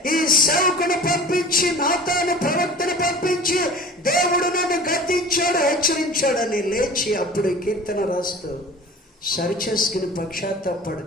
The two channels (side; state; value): both; normal; correlation 0.40